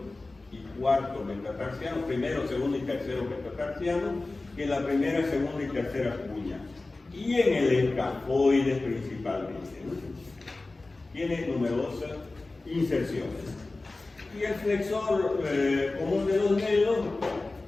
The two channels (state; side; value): quieter; right; 3.2 dB